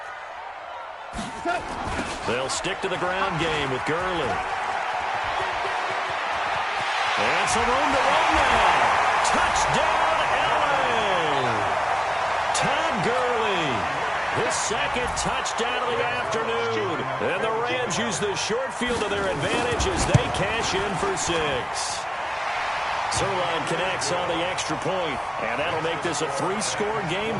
They'll stick to the ground game with Gurley. And some room to run now. Touchdown, LA. Todd Gurley, his 2nd touchdown of the afternoon. And the Rams use the short field to their advantage as they cash in for 6. Sirline connects on the extra point, and that'll make this a 3-score game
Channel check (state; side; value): identical; both; correlation 1.00